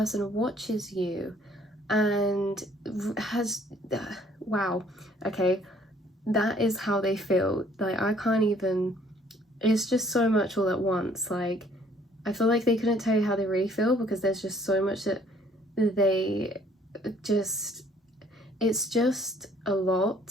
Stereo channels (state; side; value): normal; both; correlation 0.60